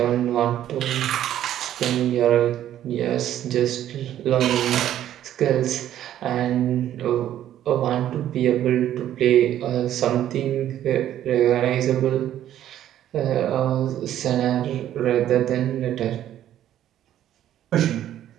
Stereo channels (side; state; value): left; quieter; 11.7 dB